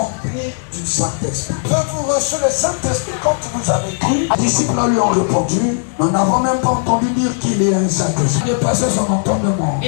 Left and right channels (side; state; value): right; silent; digital silence